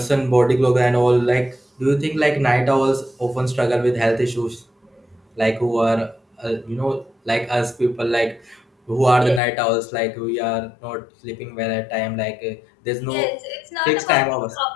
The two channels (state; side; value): drops out; right; at 9.4 s